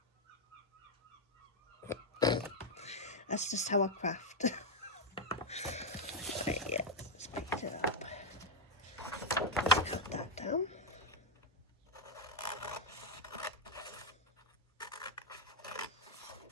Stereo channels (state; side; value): normal; both; correlation 0.01